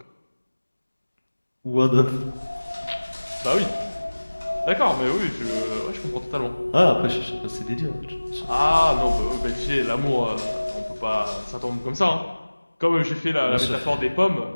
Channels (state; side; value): inverted; both; correlation -1.00